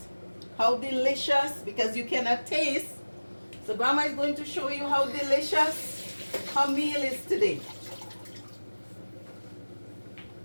how delicious, because you cannot taste. So Grandma is going to show you how delicious her meal is today.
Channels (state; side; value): inverted; both; correlation -1.00